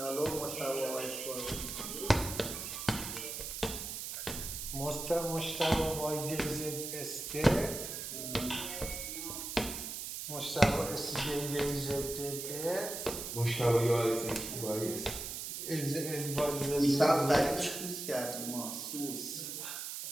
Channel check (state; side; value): noise; right; hiss, 6 dB below the sound